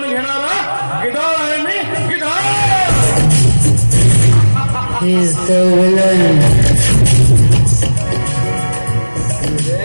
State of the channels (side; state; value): both; inverted; correlation -1.00